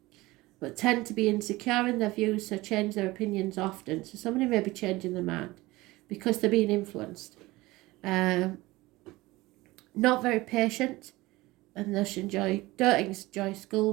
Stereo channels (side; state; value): left; quieter; 20.1 dB